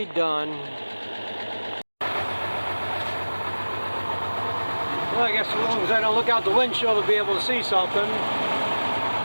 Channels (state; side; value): inverted; both; correlation -1.00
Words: done. Well, I guess as long as I don't look out the windshield to be able to see something.